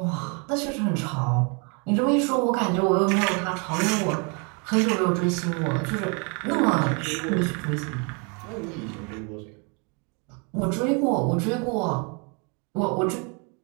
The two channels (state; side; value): quieter; left; 34.1 dB